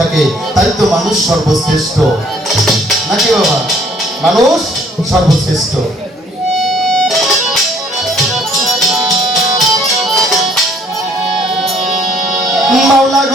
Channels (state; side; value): normal; both; correlation 0.61